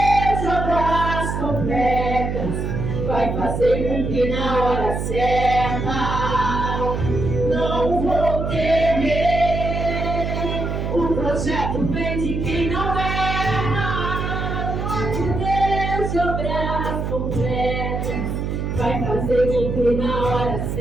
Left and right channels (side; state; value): right; noise; hum, 2 dB below the sound